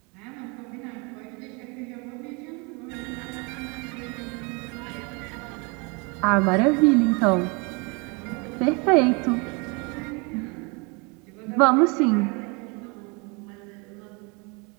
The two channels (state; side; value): quieter; left; 30.5 dB